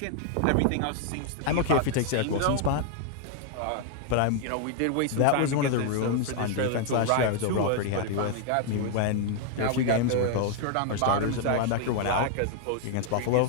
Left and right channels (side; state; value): both; different; correlation 0.00